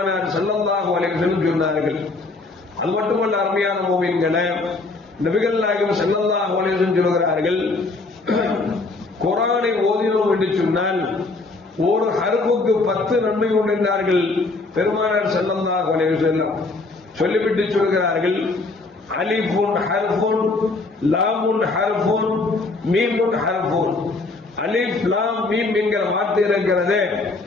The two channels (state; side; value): quieter; right; 3.5 dB